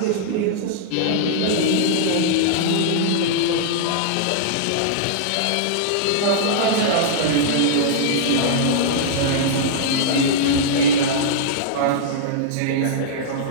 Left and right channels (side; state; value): both; different; correlation -0.02